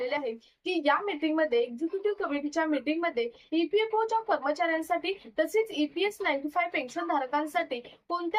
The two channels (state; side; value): identical; both; correlation 1.00